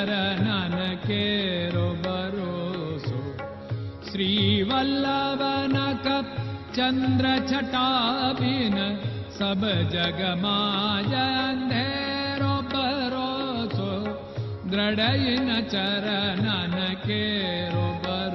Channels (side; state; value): both; identical; correlation 1.00